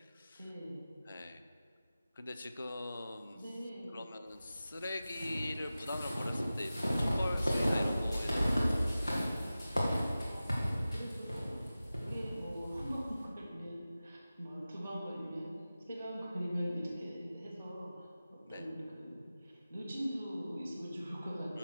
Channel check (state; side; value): inverted; both; correlation -0.95